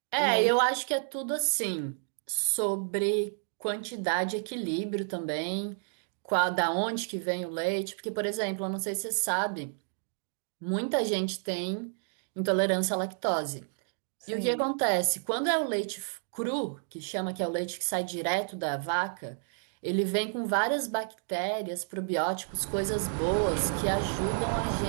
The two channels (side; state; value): left; silent; 57 dB below the other